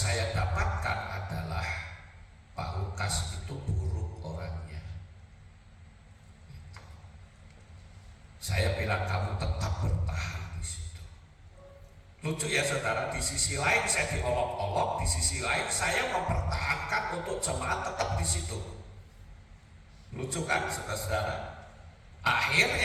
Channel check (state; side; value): identical; both; correlation 1.00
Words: dapatkan adalah Pak Lukas itu buruk orangnya. Saya bilang kamu tetap bertahan di situ. Lucu ya saudara, di sisi lain saya diolok-olok, di sisi lain saya mempertahankan untuk jemaat tetap di situ. Lucu kan saudara-saudara?